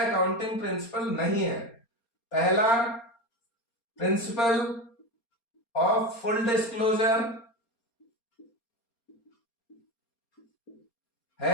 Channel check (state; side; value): late; right; 4.3 ms